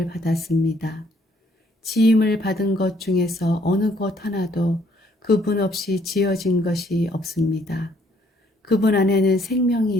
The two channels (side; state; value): both; normal; correlation 0.65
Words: 받았습니다. 지음을 받은 것 중에서 어느 것 하나도 그분 없이 지어진 것이 없습니다. 그분 안에는 생명이